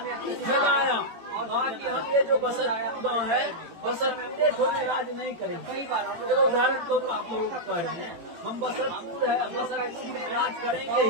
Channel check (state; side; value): late; left; 18 ms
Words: फैलाया। बाकी हम ये जो बसतपुर गाँव है, बसतपुर को में राज नहीं करेंगे। तो उदाहरण तो आप लोगों को कह रहे हैं, हम बसतपुर में राज करेंगे